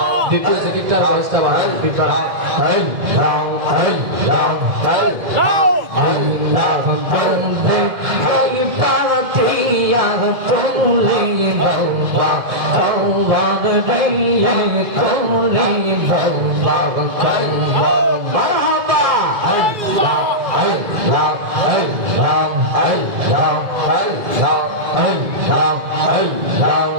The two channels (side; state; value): left; late; 2.1 ms